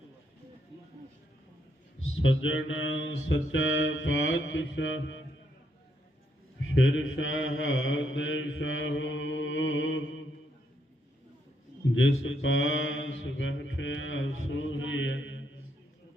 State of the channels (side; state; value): both; normal; correlation 0.76